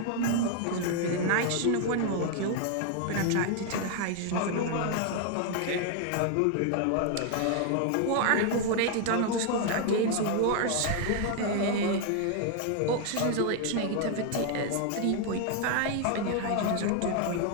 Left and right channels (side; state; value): both; different; correlation 0.00